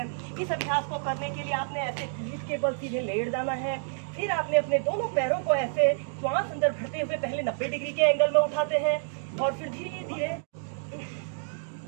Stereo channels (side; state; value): left; silent; digital silence